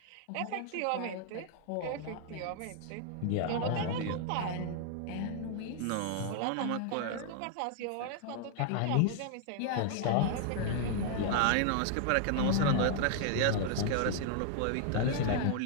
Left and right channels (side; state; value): both; different; correlation 0.00